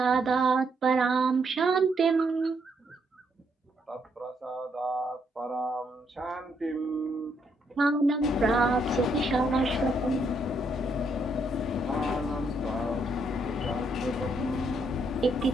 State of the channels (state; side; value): normal; both; correlation 0.74